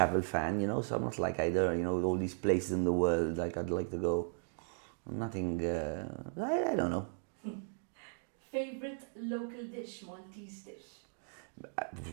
fan, you know, so I'm not like either, you know, all these places in the world, like I'd like to go. Nothing, I don't know. Favorite local dish, Maltese dish?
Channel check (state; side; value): silent; left; digital silence